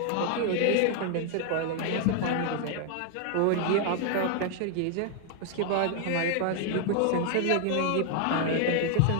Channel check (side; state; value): both; different; correlation 0.00